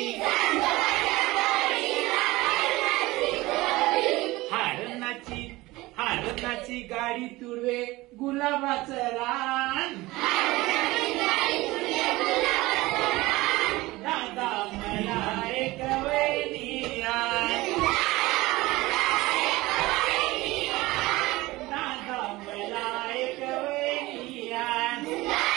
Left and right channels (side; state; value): left; quieter; 19.8 dB